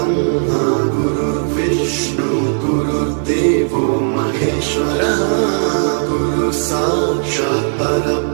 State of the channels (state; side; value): silent; left; digital silence